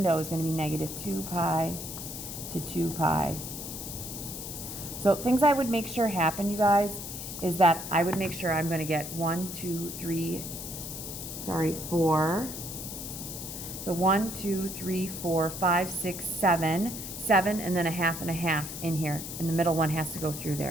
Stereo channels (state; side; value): noise; left; hiss, 8 dB below the sound